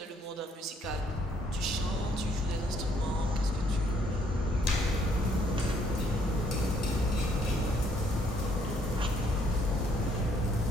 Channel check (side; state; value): both; normal; correlation 0.67